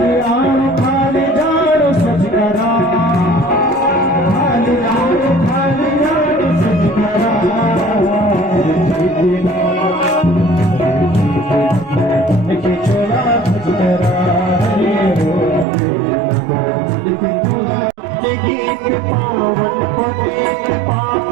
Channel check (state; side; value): drops out; left; at 15.7 s